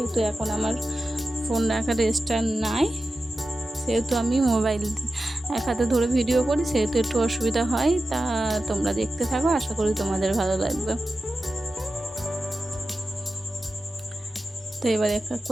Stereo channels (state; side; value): normal; both; correlation 0.93